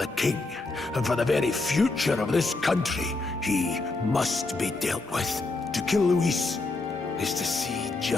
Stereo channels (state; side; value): quieter; right; 3.3 dB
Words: king, and for the very future of this country. He must be dealt with. To kill Luis is to see